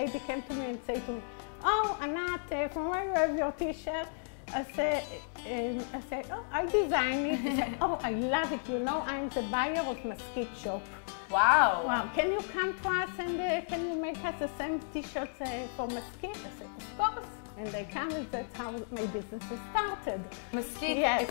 came to me and said to me, "Oh, Anat, from where you have your t-shirt?" I said, "Oh, I designed it." She said, "Oh, I love it. You know, I'm the buyer of Mesquite Shop. Wow. Wow, can you come to us and can you make us the same t-shirts for Mesquite?" I said, "Of course." And they come, and that's how my business started. Mesquite, Yes.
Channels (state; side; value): silent; right; digital silence